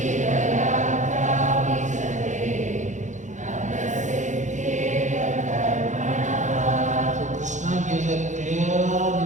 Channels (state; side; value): late; left; 0.35 ms